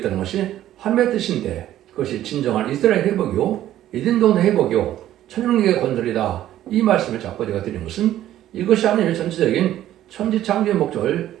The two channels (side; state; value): left; quieter; 12.8 dB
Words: 것이 하나님의 뜻인데, 그것이 진정한 이스라엘 회복이요 에덴 동네 회복이요 천년국의 건설이다, 이 말씀을 자꾸 제가 드린 것은 이것이 하나님의 전체적인 천지창조의 목적을